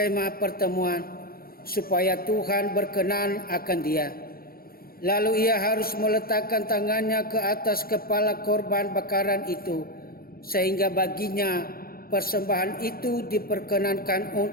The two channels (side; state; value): right; late; 0.43 ms